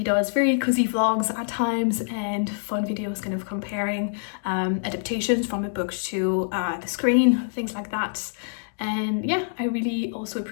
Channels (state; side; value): silent; right; digital silence